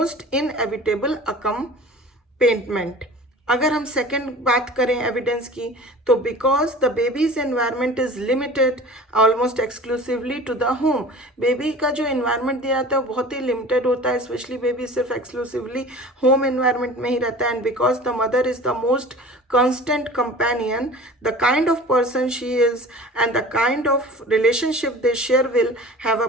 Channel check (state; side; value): normal; both; correlation 0.41